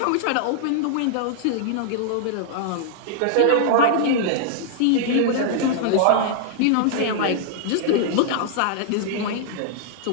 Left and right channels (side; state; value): both; different; correlation -0.01